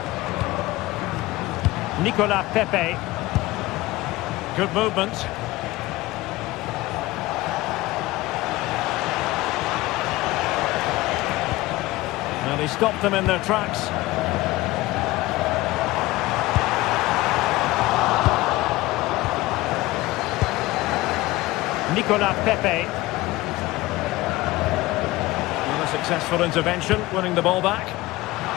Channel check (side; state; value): right; quieter; 19.2 dB